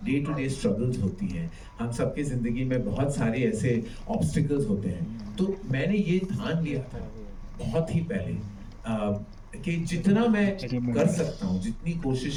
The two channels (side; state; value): both; identical; correlation 1.00